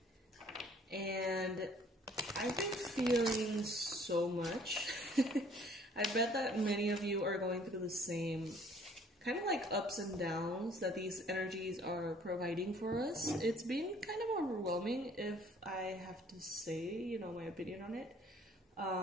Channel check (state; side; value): normal; both; correlation 0.57